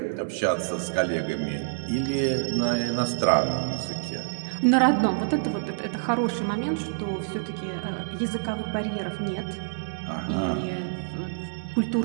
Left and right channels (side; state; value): left; silent; digital silence